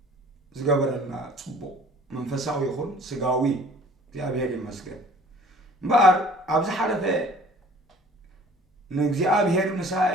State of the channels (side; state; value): both; normal; correlation 0.51